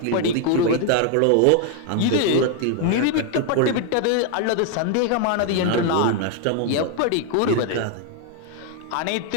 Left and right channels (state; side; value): different; both; correlation 0.00